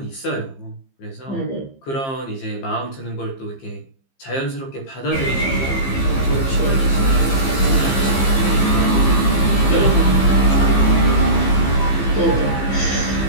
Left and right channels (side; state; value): right; late; 15 ms